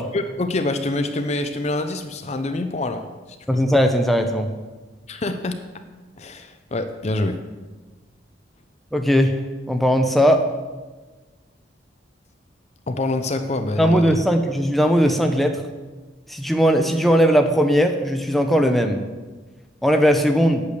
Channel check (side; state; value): both; normal; correlation 0.77